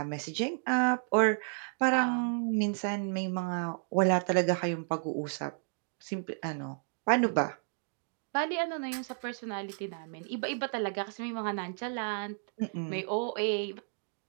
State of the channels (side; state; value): left; silent; 56 dB below the other